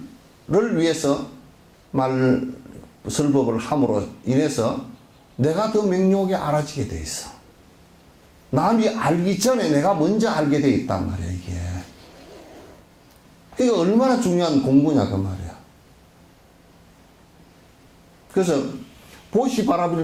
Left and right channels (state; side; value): identical; both; correlation 1.00